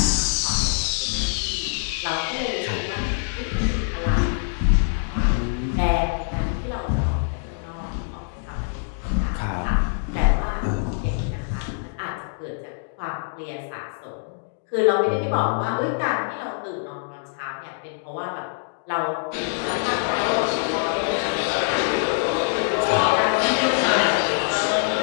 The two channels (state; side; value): silent; right; digital silence